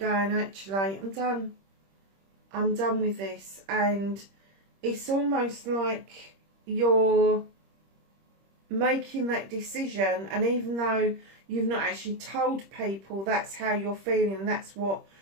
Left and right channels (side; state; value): left; late; 26 ms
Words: actually, I'm done. I'm done with this. And it's almost like you're making that decision, and even though you've not actually told people that's how you're feeling and that's what